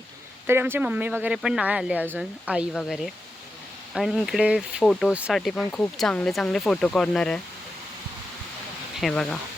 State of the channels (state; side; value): normal; both; correlation 0.89